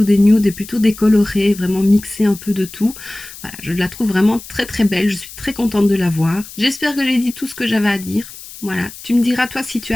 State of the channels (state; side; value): noise; left; hiss, 16 dB below the sound